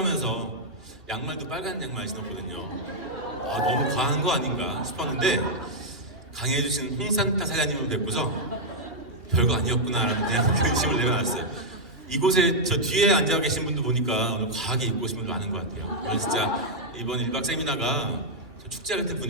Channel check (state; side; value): late; left; 2.9 ms